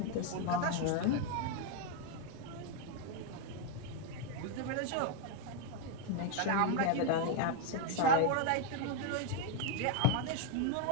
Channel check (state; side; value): different; both; correlation 0.01